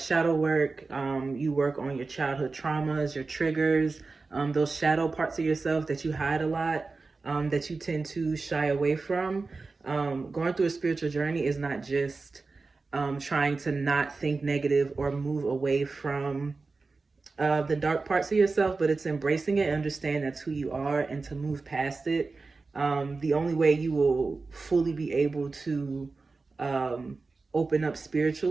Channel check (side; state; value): left; quieter; 3.9 dB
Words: work. You work on your childhood traumas, your triggers, those shadow parts of yourself that you hide a lot, that you tend to shy away from. Going through a spiritual journey is not just trying to not think negative or move away from the dark parts of yourself, but it's embracing it, understand that's who you are, and to move past it. The only way you will fully be able to open up